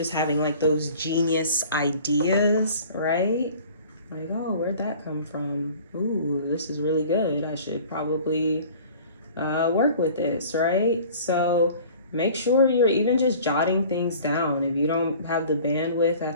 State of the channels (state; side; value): inverted; both; correlation -0.46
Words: having like those genius ideas, right? Like, oh, where'd that come from? Ooh, this is really good. I should probably work with this, right? So make sure you're even just jotting things down. If you don't have the bandwidth